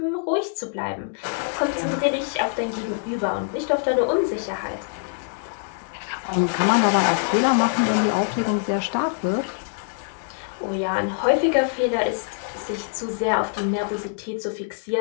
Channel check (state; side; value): silent; right; 62 dB below the other